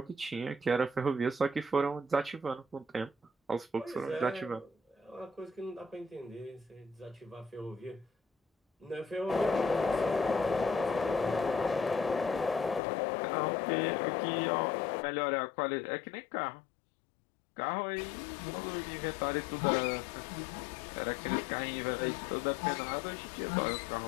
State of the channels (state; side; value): drops out; right; at 12.8 s